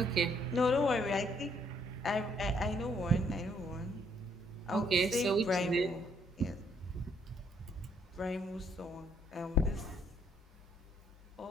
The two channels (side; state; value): both; normal; correlation 0.69